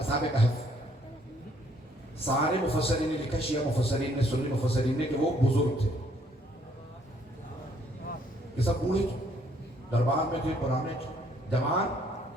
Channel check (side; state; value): both; normal; correlation 0.66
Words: کہف سارے مفسرین نے لکھا, شیعہ مفسرین نے, سنی مفسرین نے, کہ وہ بزرگ تھے, کہ سب بوڑھے تھے, دربار میں تھے, پرانے تھے, جوان.